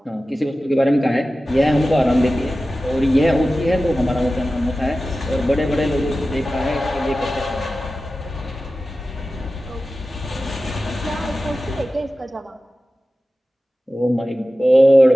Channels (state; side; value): normal; both; correlation 0.95